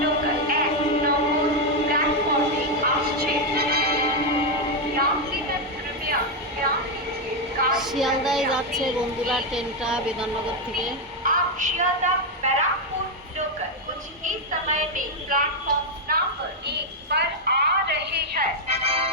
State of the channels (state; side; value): normal; both; correlation 0.03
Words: লোকাল 1 নম্বর প্ল্যাটফর্মে আসছে। यात्रीगण कृपया ध्यान दीजिए শিয়ালদায় যাচ্ছে বন্ধুরা ট্রেনটা বিধাননগর থেকে। आप शियालदा बैराकपुर लोकल कुछ ही समय में प्लेटफॉर्म नंबर 1 पर आ रहे हैं।